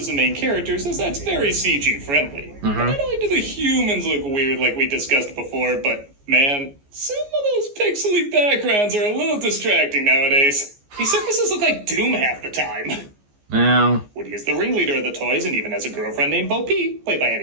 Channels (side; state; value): left; late; 14 ms